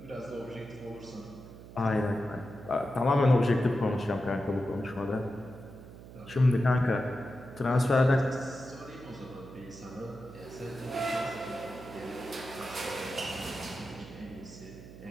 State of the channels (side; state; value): right; noise; hum, 16 dB below the sound